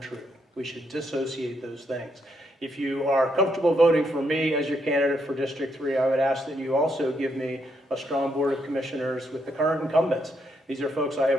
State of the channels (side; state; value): both; normal; correlation 0.77